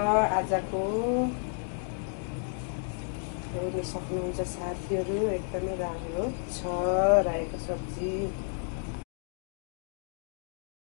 आजको। हेर्न सक्नुहुन्छ साथीहरू, एकदमै राम्रो छ रायोको सब्जी।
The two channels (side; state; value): right; silent; digital silence